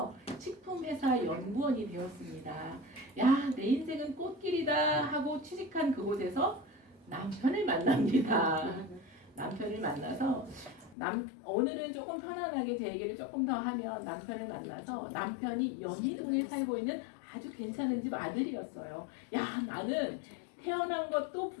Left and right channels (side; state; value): right; drops out; at 11.0 s